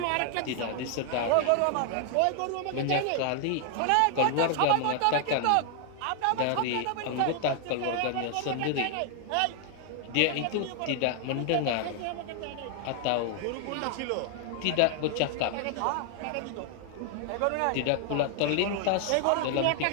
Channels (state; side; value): different; both; correlation 0.00